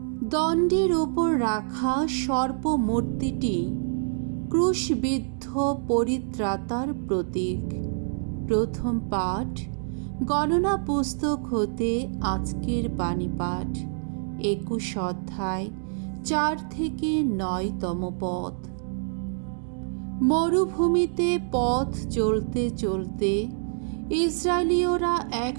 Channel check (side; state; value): left; silent; digital silence